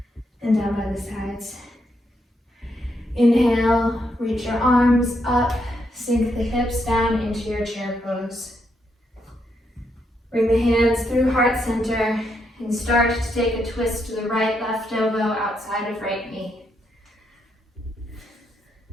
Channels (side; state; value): both; normal; correlation 0.79